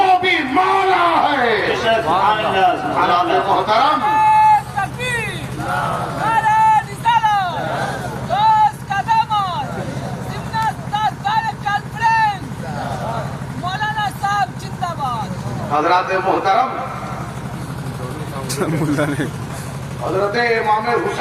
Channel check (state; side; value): identical; both; correlation 1.00